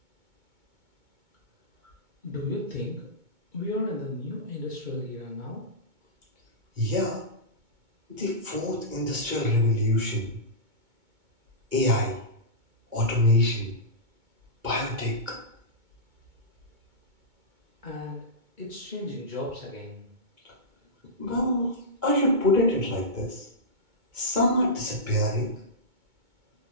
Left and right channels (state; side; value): late; left; 2.2 ms